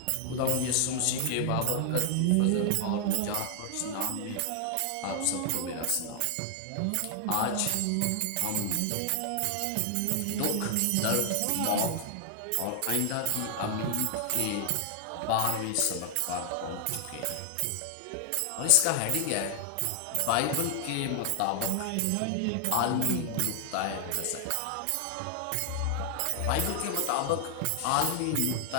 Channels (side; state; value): both; different; correlation 0.00